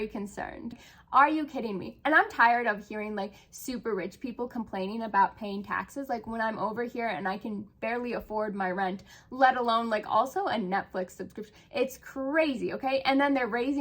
concerned. Are you kidding me? And I'm tired of hearing like super rich people complaining about paying taxes. Like when I'm over here and I can barely afford my rent, let alone like also a Netflix subscription. It's crazy, okay? And then they're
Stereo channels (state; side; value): identical; both; correlation 1.00